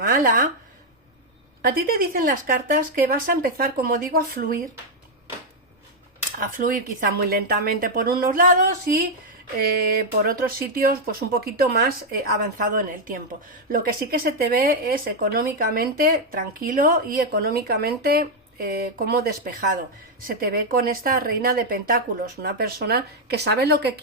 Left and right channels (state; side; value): normal; both; correlation 0.00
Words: a ti te dicen las cartas que vas a empezar, como digo, a fluir quizá muy lentamente por unos lados y por otros sitios pues un poquito más avanzado en el tiempo. Lo que sí que se te ve es económicamente tranquilo y económicamente como despejado. Se te ve con esta reina de pentáculos, una persona que sabe lo que